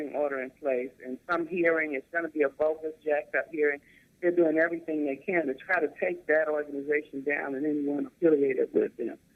order in place. And some hearing, it's going to be a bogus, jacked up hearing. They're doing everything they can to try to take that organization down and anyone affiliated with them.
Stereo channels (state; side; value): identical; both; correlation 1.00